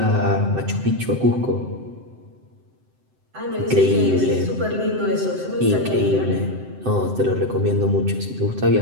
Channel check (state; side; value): late; left; 7.8 ms